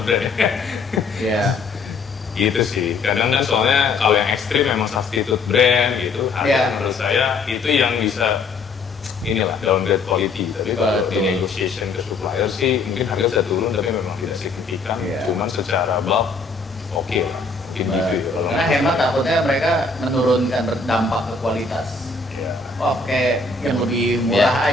ya. Ya. Gitu sih, kadang kan soalnya kalau yang ekstrim memang substitute brand gitu, harga Iya. menurut saya itu yang bisa inilah downgrade quality. Tapi kalau di Betul. negotiation ke supplier sih mungkin harga bisa turun tapi memang tidak signifikan. Iya. Cuman secara bulk oke lah, mungkin gitu ya. Kalau Karena hemat takutnya mereka menurunkan dampak ke kualitas. ya. Oh kayak yang lebih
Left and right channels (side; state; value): right; quieter; 4.1 dB